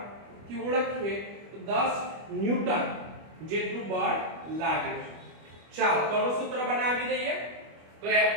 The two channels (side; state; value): left; late; 25 ms